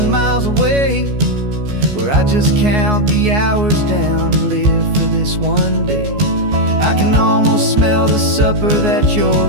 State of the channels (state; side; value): late; left; 14 ms